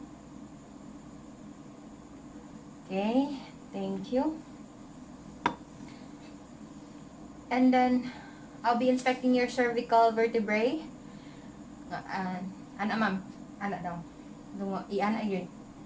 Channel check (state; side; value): identical; both; correlation 1.00